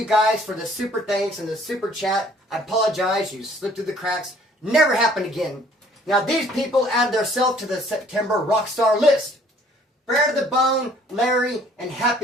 guys for the super thanks and the super chat. I apologize, you slipped through the cracks. Never happen again. Now, these people add themselves to the September Rockstar list. Brad the Bone, Larry, and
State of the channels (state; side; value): normal; both; correlation 0.57